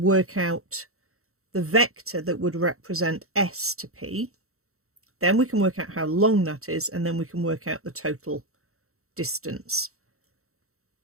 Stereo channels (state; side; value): late; left; 0.63 ms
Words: out the vector that would represent s to p. Then we can work out how long that is, and then we can work out the total distance.